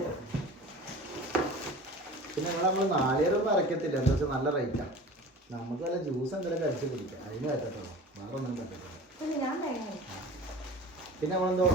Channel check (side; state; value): both; normal; correlation 0.39